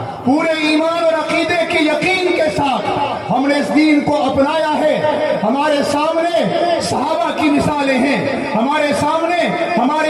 پورے ایمان اور عقیدے کے یقین کے ساتھ ہم نے اس دین کو اپنایا ہے۔ ہمارے سامنے صحابہ کی مثالیں ہیں، ہمارے سامنے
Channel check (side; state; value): both; identical; correlation 1.00